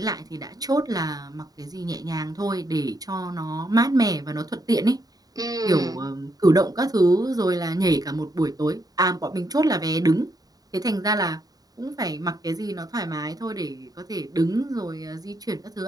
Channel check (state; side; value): late; left; 0.18 ms